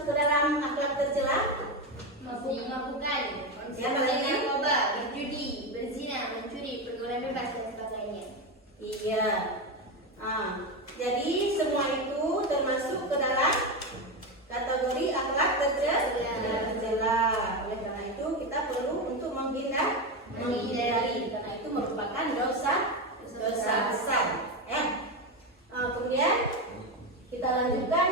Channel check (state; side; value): normal; both; correlation 0.14